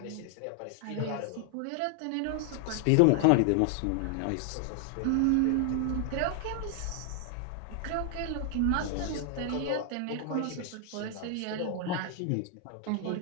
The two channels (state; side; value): different; both; correlation 0.00